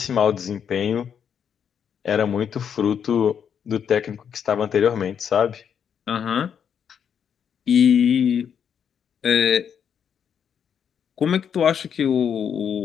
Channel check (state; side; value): quieter; right; 7.9 dB